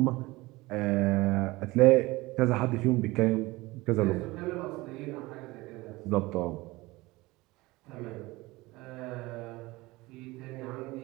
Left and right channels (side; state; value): left; quieter; 21.1 dB